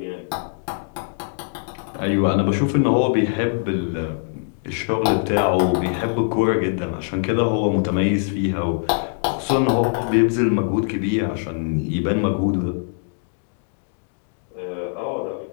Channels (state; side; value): silent; right; digital silence